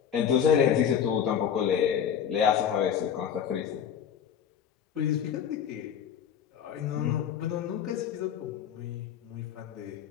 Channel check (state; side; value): quieter; right; 8.5 dB